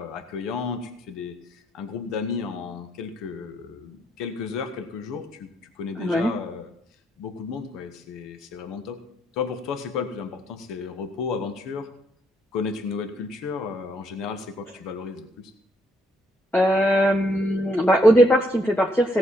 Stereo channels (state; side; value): normal; both; correlation 0.71